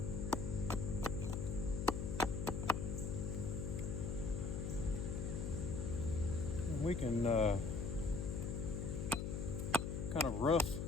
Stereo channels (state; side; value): noise; left; hum, 2 dB below the sound